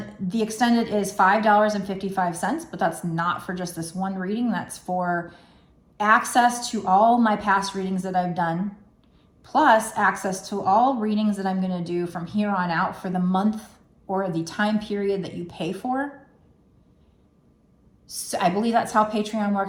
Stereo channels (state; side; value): identical; both; correlation 1.00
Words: the extended is $5.55, but that's not for just this one reading. That's for access to all my past readings that I've done, plus access to all readings that I'm going to do from here on out for the month or the time period that you pay for. So I believe that's how Patreon